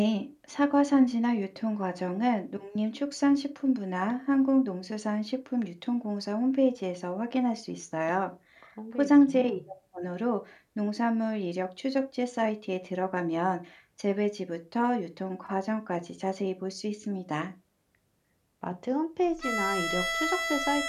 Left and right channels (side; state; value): both; identical; correlation 1.00